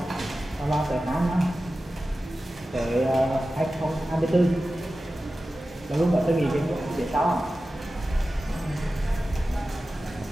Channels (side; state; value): both; normal; correlation 0.94